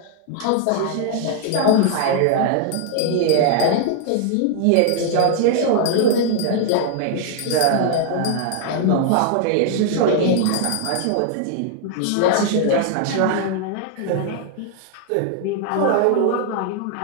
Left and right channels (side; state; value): both; different; correlation 0.00